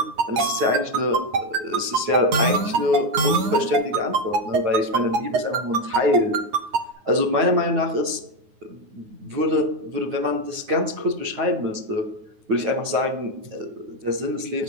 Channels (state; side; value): late; left; 9.5 ms